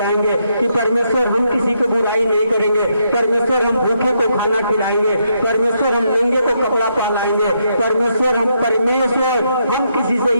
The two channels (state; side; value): inverted; both; correlation -0.78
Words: कि परमेश्वर हम किसी को बुराई नहीं करेंगे, परमेश्वर हम भूखे को खाना खिलाएंगे, परमेश्वर हम नंगे को कपड़ा पहनाएंगे, परमेश्वर हम किसी से